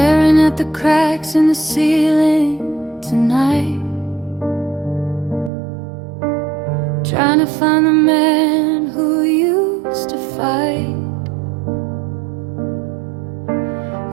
at the cracks in the ceiling tonight, trying to find the man who used to fight,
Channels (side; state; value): left; drops out; at 5.5 s